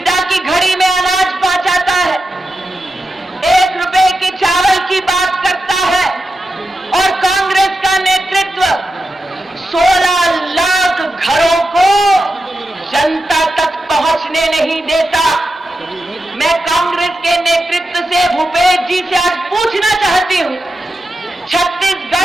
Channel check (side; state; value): both; normal; correlation 0.90